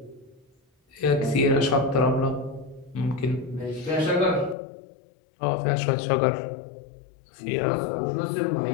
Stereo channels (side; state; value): right; drops out; at 4.5 s